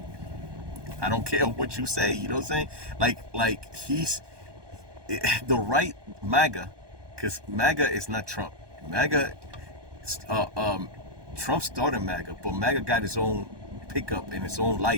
I don't care what you say. You know what I'm saying? Like he's the right MAGA, because MAGA is not Trump. MAGA, Trump started MAGA, but MAGA got his own pickup in its own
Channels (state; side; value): late; left; 1.2 ms